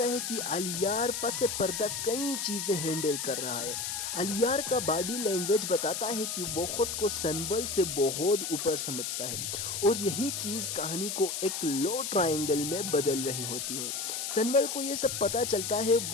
ہے کہ الیار پس پردہ کئی چیزیں ہینڈل کر رہا ہے۔ الیار کا باڈی لینگویج بتاتا ہے کہ وہ خود کو سنبل سے بہت اوپر سمجھتا ہے، اور یہی چیز کہانی کو ایک لو ٹرائنگل میں بدل رہی ہوتی ہے۔ سنبل کو یہ سب پتہ چلتا ہے،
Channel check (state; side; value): noise; left; hiss, 3 dB below the sound